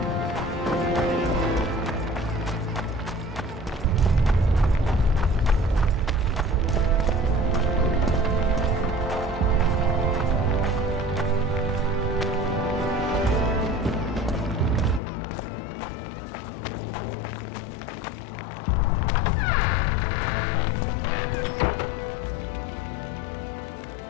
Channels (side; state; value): right; drops out; at 15.0 s